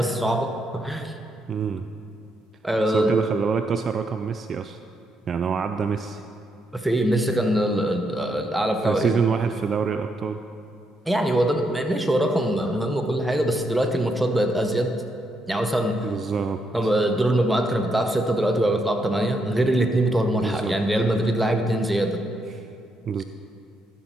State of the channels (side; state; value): both; normal; correlation 0.78